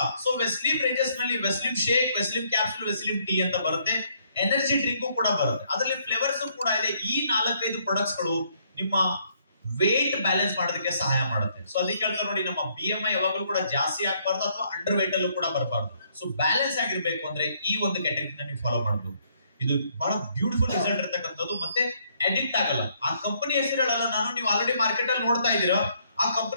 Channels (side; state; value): both; inverted; correlation -0.68